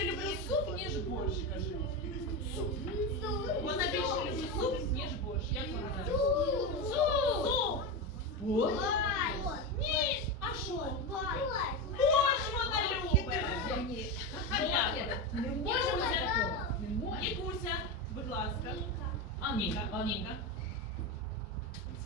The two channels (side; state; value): both; normal; correlation 0.16